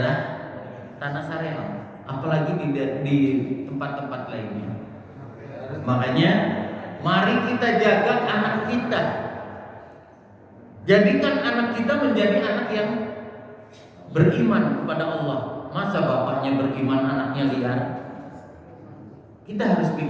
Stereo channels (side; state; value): both; identical; correlation 1.00